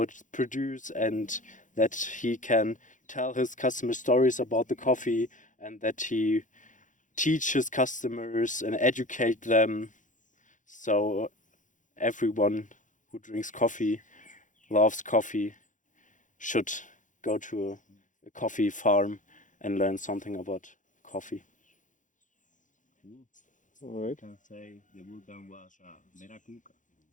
it's produced, and that he can tell his customers stories about the coffee, and that he teach his customers and educate them. So everyone who drinks coffee, loves coffee, should go to a coffee farm and learn something about coffee. All right.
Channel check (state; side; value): late; right; 0.37 ms